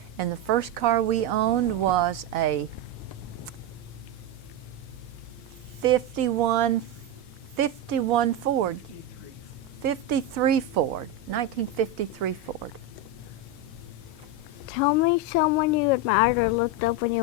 And the first car we owned was a 53 Ford, 1953 Ford. Tell me someone you admired or looked up when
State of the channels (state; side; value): normal; both; correlation 0.10